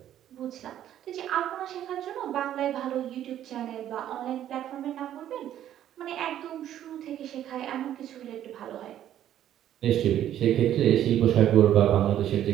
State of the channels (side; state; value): left; quieter; 11.4 dB